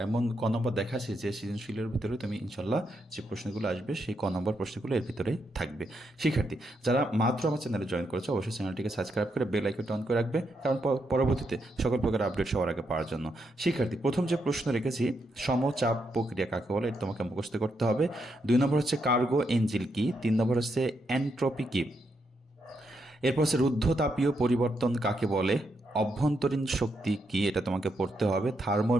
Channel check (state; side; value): normal; both; correlation 0.80